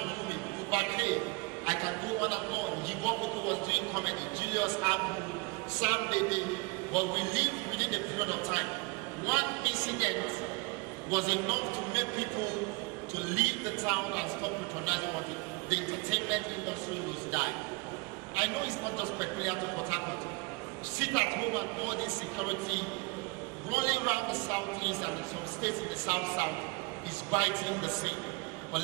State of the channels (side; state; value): left; quieter; 28.0 dB